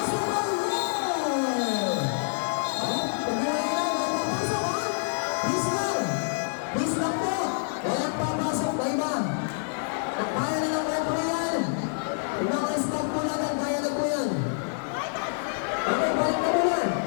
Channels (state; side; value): silent; right; digital silence